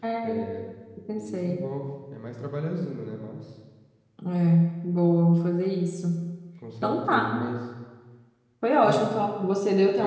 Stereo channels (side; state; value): both; identical; correlation 1.00